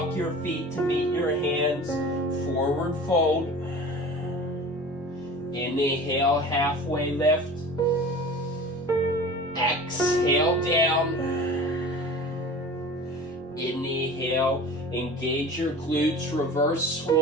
your feet to meet your hands. Forward fold. Inhale, halfway lift. Exhale, down. Inhale, engage your glutes, reverse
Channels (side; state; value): both; normal; correlation 0.38